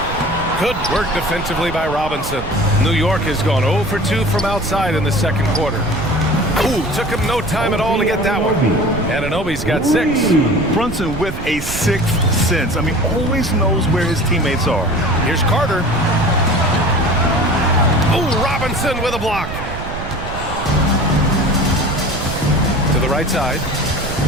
Good work defensively by Robinson. New York has gone 0 for 2 from outside in the second quarter. Ooh, took him no time at all to get that one. Anunoby's got 6. Brunson with a 6th sense. I mean, always knows where his teammates are. Here's Carter. Ooh, Robinson with a block. To the right side.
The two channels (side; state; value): right; noise; rumble, 8 dB below the sound